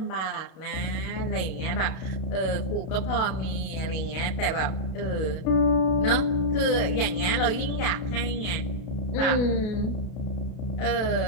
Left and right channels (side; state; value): right; late; 32 ms